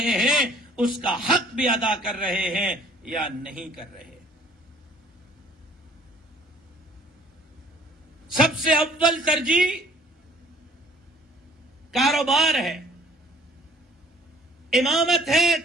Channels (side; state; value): both; normal; correlation 0.55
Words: ہیں، اس کا حق بھی ادا کر رہے ہیں یا نہیں کر رہے۔ سب سے اول ترجیح کاروبار ہے، امامت ہے،